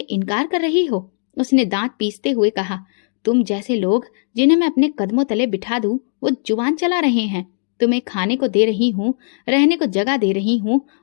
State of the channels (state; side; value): silent; right; digital silence